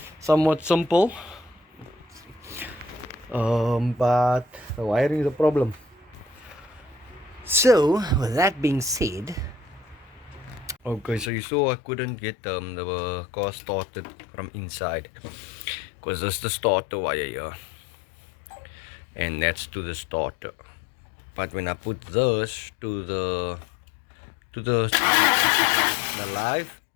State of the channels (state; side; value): drops out; right; at 11.3 s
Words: somewhat simple. But the wiring is a problem. So with that being said, okay, so you saw I couldn't get the car started from inside because this is the starter wire here, and that's to the starter. But when I put this to the live,